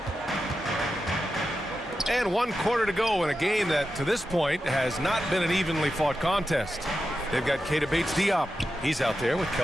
And 1 quarter to go in a game that, to this point, has not been an evenly fought contest. They've got Keita Bates-Diop. He's out there with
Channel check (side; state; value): both; normal; correlation 0.90